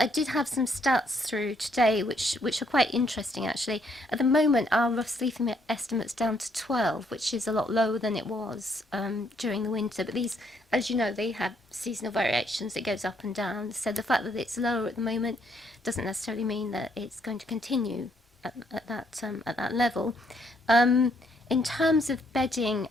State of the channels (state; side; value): normal; both; correlation 0.71